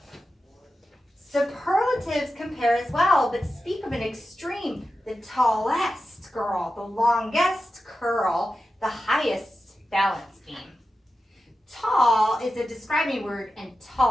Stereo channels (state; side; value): normal; both; correlation 0.92